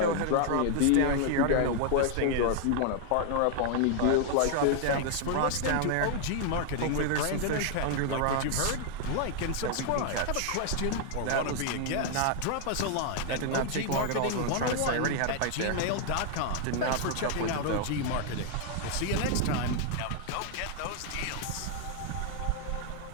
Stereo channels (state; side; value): different; both; correlation 0.00